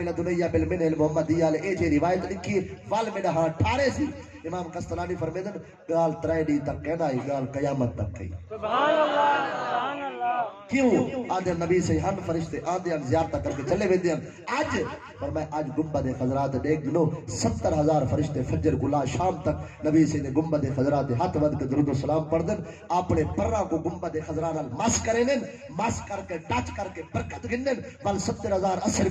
بالمنہ المحمدیہ لے اے جے روایت لکھی وال میں ہاں ٹھارے سی امام قسطلانی فرمیدن گال ترے ڈی تک کہنا ہی گال قیامت تک کہی سبحان اللہ سبحان اللہ کیوں آدھے نبی سے ہن فرشتے آدھے ہن زیارتہ کر کے چلے ویندے ہیں آج پر میں آج گنبد خضرات دیکھ گنو 70,000 فرشتے فجر گلا شام تک نبی سے نے گنبد خضرات ہاتھ ود کے درود و سلام پڑھ دن اپنے پرہ کو گنبد خضرات مس کریں مس کر کے ٹچ کر کے برکت گنن بل 70,000 اثر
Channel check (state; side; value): identical; both; correlation 1.00